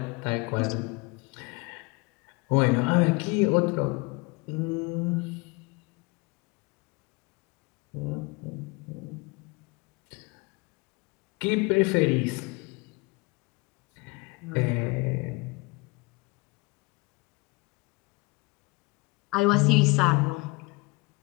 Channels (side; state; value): right; quieter; 26.2 dB